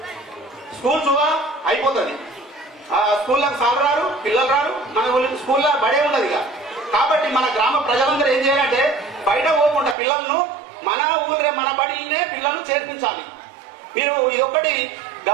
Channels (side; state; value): left; drops out; at 10.0 s